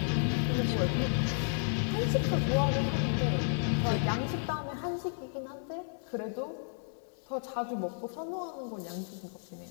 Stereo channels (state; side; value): silent; right; digital silence